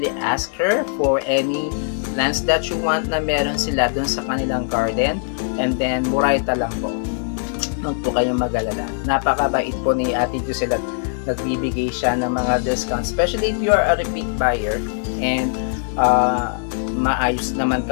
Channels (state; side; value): silent; right; 60 dB below the other